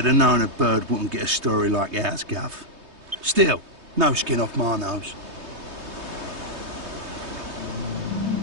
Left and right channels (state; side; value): late; left; 3.2 ms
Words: have known a bird wouldn't get a story like ours, Gov. Still, no skin off my nose.